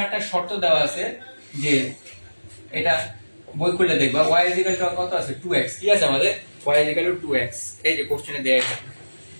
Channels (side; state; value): both; inverted; correlation -1.00